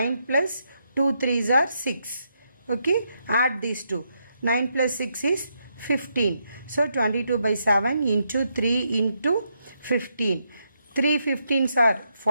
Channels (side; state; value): both; inverted; correlation -0.80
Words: plus 2 3s are 6. Okay, add these two. 9 plus 6 is 15. So 22 by 7 into 3 into 15. 3 15s are